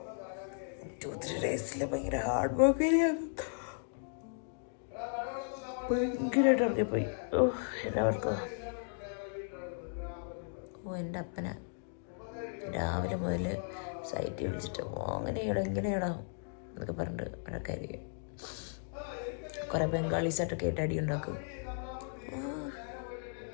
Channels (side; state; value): right; silent; digital silence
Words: 2-3 days ഭയങ്കര ഹാർഡ് വർക്ക് ഭയങ്കരമായിട്ട് ഇറങ്ങിപ്പോയി. എല്ലാവർക്കും എൻ്റെ അപ്പന രാവിലെ മുതൽ സൈറ്റിൽ വിളിച്ചിട്ട് അങ്ങനെയാടാ ഇങ്ങനെയാടാ എന്നൊക്കെ പറഞ്ഞിട്ട് വഴക്കായിരിക്കും. കുറെ ബംഗാളീസായിട്ടൊക്കെ ആയിട്ട് അടി ഉണ്ടാക്കും.